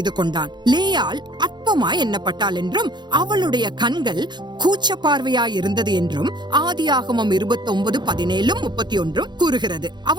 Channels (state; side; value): late; left; 0.21 ms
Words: கொண்டான். லேயாள் அற்பமாய் எண்ணப்பட்டாள் என்றும் அவளுடைய கண்கள் கூச்ச பார்வையாய் இருந்தது என்றும் ஆதியாகமம் 29:17-31 கூறுகிறது.